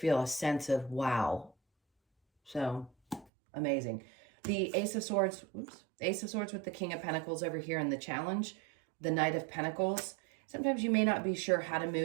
a sense of wow. So amazing. The Ace of Swords, Ace of Swords with the King of Pentacles over here in the challenge, the Knight of Pentacles. Sometimes you may not be sure how to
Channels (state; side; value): drops out; left; at 3.3 s